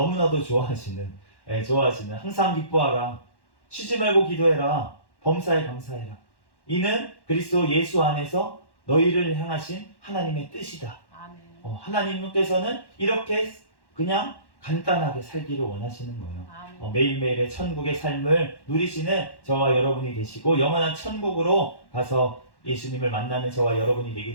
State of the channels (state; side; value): late; right; 1.1 ms